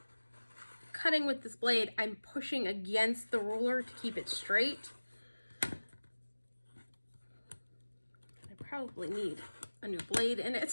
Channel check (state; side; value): inverted; both; correlation -1.00